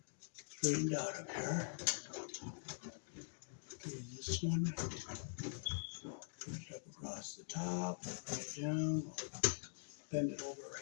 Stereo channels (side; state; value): right; silent; digital silence